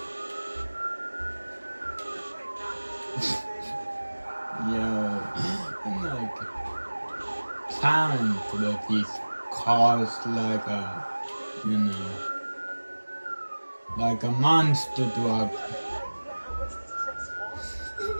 Yo, I'm like plowing with these cars like a, you know, like a monster truck.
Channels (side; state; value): both; inverted; correlation -1.00